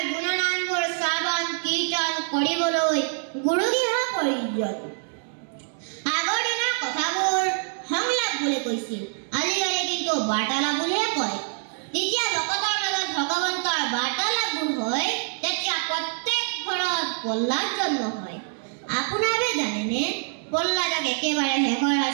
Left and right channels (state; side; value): silent; left; 57 dB below the other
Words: গুণনামবোৰ শ্ৰৱণ কীৰ্তন কৰিবলৈ গুৰু গৃহ প্ৰয়োজন। আগৰ দিনৰ কথাবোৰ সংলাপ বুলি কৈছিল, আজিকালি কিন্তু বাৰ্তালাপ বুলিহে কয়। যেতিয়া ভকতৰ মাজত ভগৱন্তৰ বাৰ্তালাপবোৰ হয়, তেতিয়া প্ৰত্যেক ঘৰত প্ৰহ্লাদ জন্ম হয়। আপোনালোকে জানেনে প্ৰহ্লাদক একেবাৰে শেষৰ